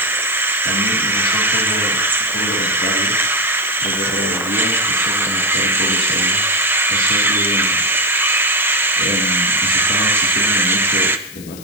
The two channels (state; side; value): noise; left; hiss, 17 dB below the sound